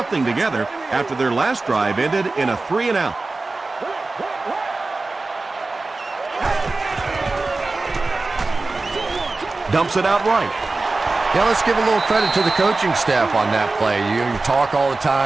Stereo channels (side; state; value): left; quieter; 3.5 dB